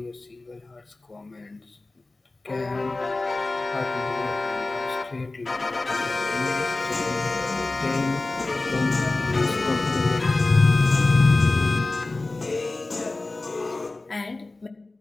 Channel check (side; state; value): right; quieter; 3.2 dB